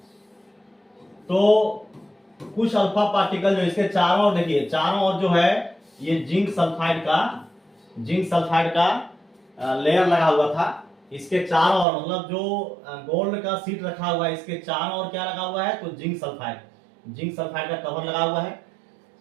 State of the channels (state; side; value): drops out; left; at 11.9 s